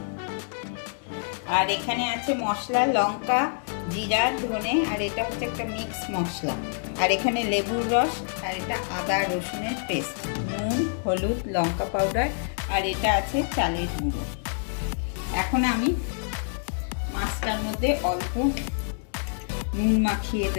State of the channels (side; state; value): right; silent; digital silence